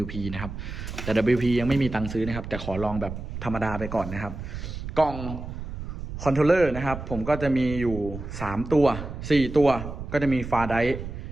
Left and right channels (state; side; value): noise; right; rumble, 8 dB below the sound